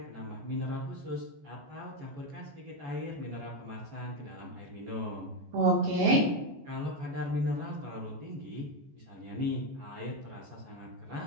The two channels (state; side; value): late; left; 14 ms